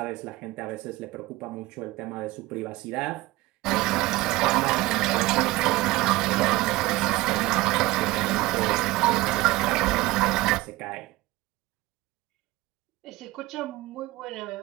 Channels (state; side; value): quieter; left; 19.4 dB